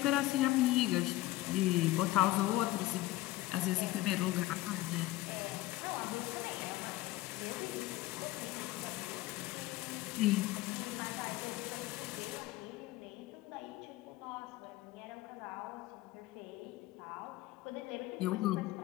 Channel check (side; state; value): right; quieter; 17.0 dB